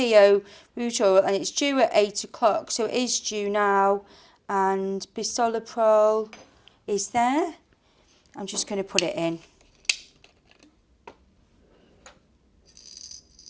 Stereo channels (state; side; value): identical; both; correlation 1.00